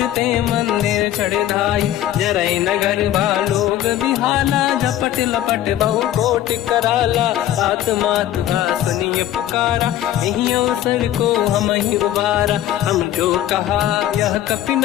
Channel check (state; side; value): quieter; right; 12.5 dB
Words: ते मंदिर चढ़ धाई, जरई नगर बालोग बिहाला, झपट लपट बहु कोट कराला, बात मात सुनिय पुकारा, यही अवसर को हम ही उबारा, हम जो कहा यह कपि